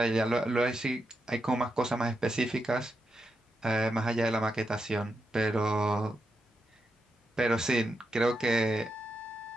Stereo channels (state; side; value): normal; both; correlation 0.85